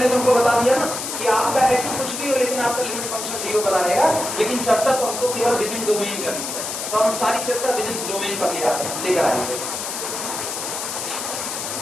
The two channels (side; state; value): left; noise; hiss, 5 dB below the sound